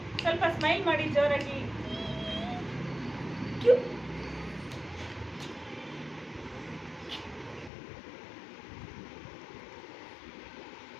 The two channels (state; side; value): drops out; right; at 7.7 s